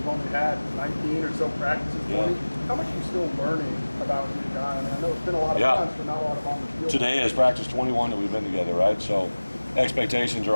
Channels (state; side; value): inverted; both; correlation -1.00